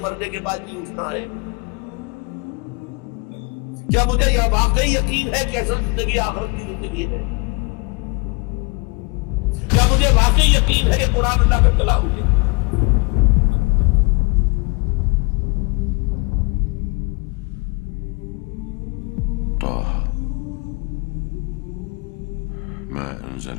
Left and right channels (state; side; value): quieter; right; 29.9 dB